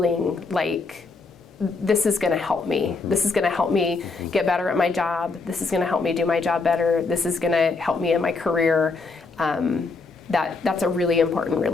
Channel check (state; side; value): quieter; right; 4.1 dB